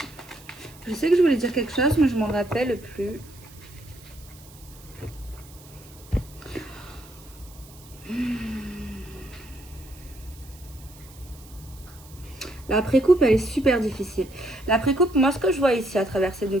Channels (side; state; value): right; noise; hiss, 22 dB below the sound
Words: Je sais que je voulais dire quelque chose, mais je m'en rappelle plus. La précoupe, elle est super difficile. La précoupe, moi, ce que je vois ici à travers ces deux